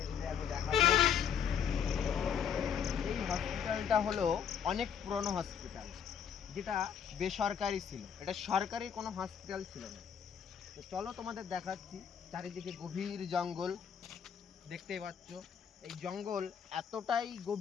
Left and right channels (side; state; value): right; quieter; 7.9 dB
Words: ঘুরে আমি দেখাবো। এই হসপিটালটা হলো অনেক পুরনো হসপিটাল, যেটা বেসরকারি ছিল, এটা সরকারি কোনো হসপিটাল ছিল না। তো চলো তোমাদের দেখাচ্ছি। চারিদিকে গভীর জঙ্গল দেখতেই পাচ্ছ। এই জঙ্গল এতটাই